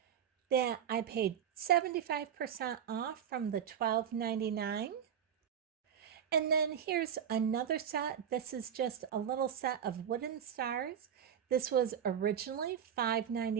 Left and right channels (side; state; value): left; quieter; 8.6 dB